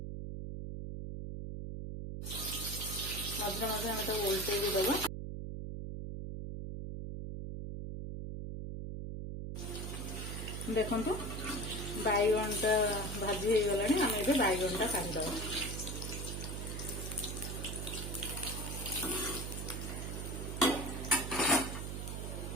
मध्य मध्य हम तो उल्टे भी दबा देखंतु बैगणटा भाजी हो गलानी हम एबे बैगणटा काढी दबा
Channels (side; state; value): right; noise; hum, 5 dB below the sound